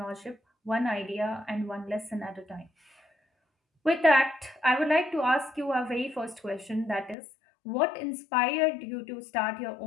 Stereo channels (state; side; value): drops out; right; at 7.2 s